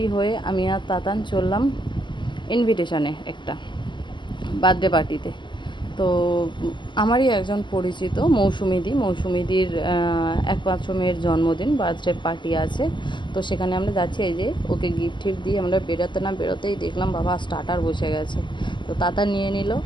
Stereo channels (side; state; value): right; late; 0.22 ms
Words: হয়ে আমি আর তাতান চললাম ইনভিটেশনে একটা বার্থডে পার্টিতে। তো আমারই একজন পরিচিত মৌসুমিদির একমাত্র মেয়ের জন্মদিন, বার্থডে পার্টি আছে। তো সেখানে আমরা যাচ্ছি। এই যে ওকে গিফট টিফট দিয়ে আমরা বেরোতে না বেরোতেই দেখলাম বাবা স্টার্টার বসে গেছে। তো তাতা নিয়ে নিল,